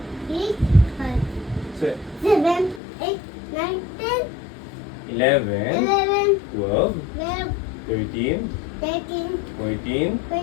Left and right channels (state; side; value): drops out; right; at 2.8 s